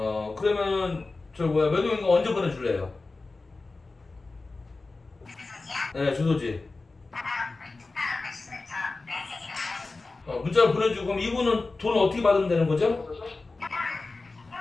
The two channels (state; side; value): quieter; right; 3.6 dB